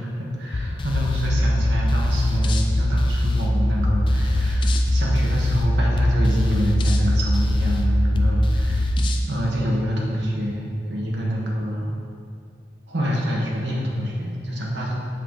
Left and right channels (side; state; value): both; normal; correlation 0.93